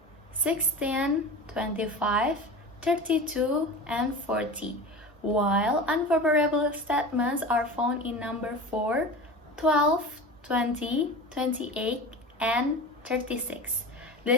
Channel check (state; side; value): normal; both; correlation 0.32